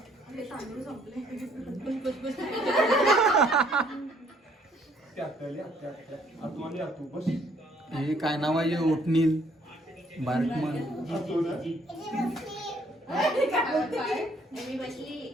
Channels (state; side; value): normal; both; correlation 0.64